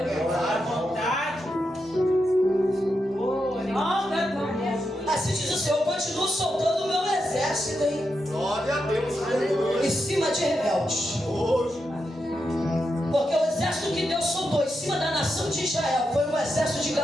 assim diz o Senhor, eu continuo soltando o meu exército aí. Glória a Deus. Em cima de rebeldes. Porque o exército que Deus soltou em cima da nação de Israel foi um exército de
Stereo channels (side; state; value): both; normal; correlation 0.86